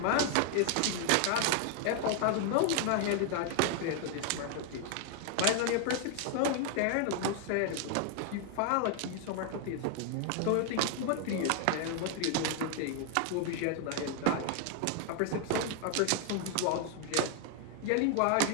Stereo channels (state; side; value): different; both; correlation 0.00